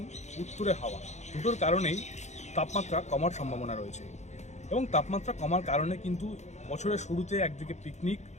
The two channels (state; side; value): late; right; 0.33 ms